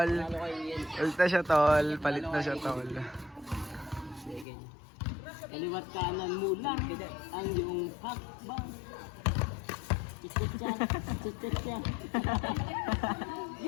Palit na siya tol. Kaliwat kanan mo lang ang iyong hakbang. Chicha.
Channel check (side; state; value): right; drops out; at 4.5 s